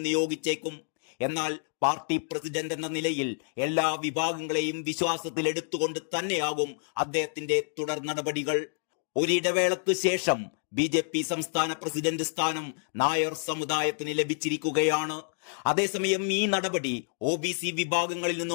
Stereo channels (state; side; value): silent; right; digital silence